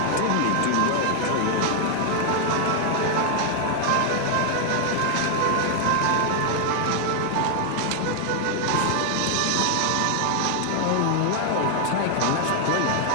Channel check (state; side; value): different; both; correlation 0.00